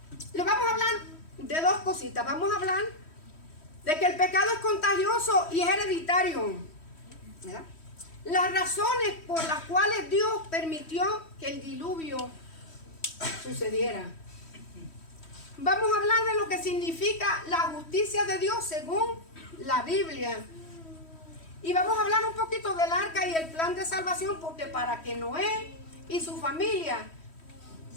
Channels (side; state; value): right; late; 3.1 ms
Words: Le vamos a hablar de dos cositas. Vamos a hablar de que el pecado es contagioso y es hereditario, ¿verdad? Las razones por las cuales Dios permitió que el diluvio sucediera. Vamos a hablar de lo que significa la justicia de Dios según la Biblia. Y vamos a hablar un poquito del arca y el plan de salvación, porque para que Noé y su familia